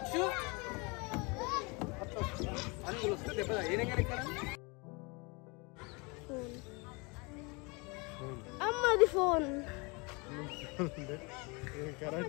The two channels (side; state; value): right; quieter; 28.9 dB